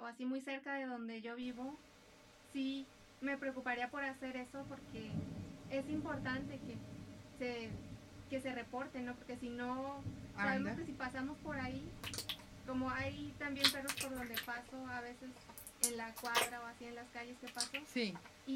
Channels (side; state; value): both; identical; correlation 1.00